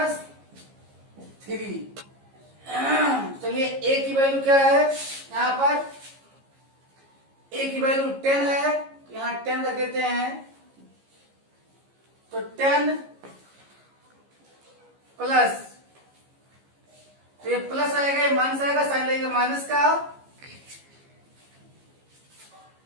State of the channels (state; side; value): late; left; 15 ms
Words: चलिए ए की वैल्यू क्या है, यहाँ पर ए की वैल्यू 10 है, यहाँ 10 रख देते हैं। तो 10 प्लस, तो ये प्लस आएगा, ये माइनस आएगा, साइन लगेगा माइनस का।